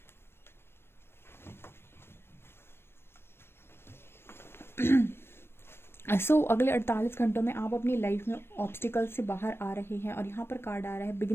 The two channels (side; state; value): right; late; 0.12 ms